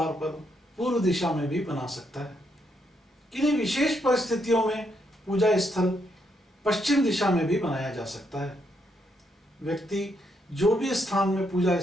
पर पूर्व दिशा में भी बना सकता है। किन्हीं विशेष परिस्थितियों में पूजा स्थल पश्चिम दिशा में भी बनाया जा सकता है। व्यक्ति जो भी स्थान में पूजा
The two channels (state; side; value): normal; both; correlation 0.77